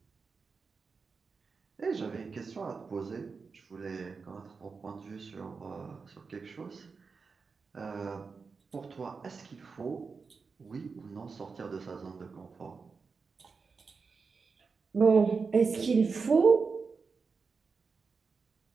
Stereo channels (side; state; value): left; quieter; 4.9 dB